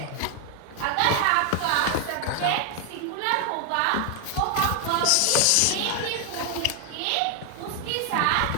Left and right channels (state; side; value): different; both; correlation 0.00